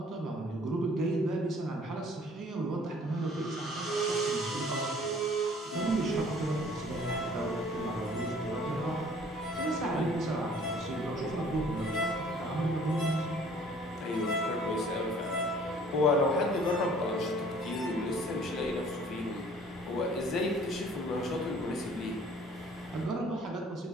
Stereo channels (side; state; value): both; normal; correlation 0.54